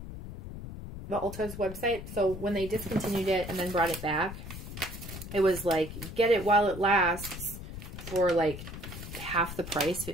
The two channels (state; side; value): noise; left; rumble, 10 dB below the sound